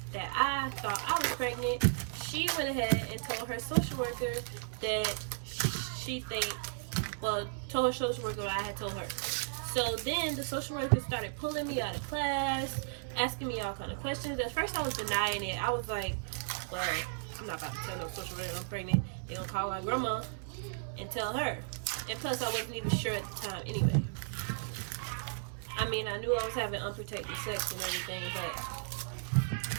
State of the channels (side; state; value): left; silent; digital silence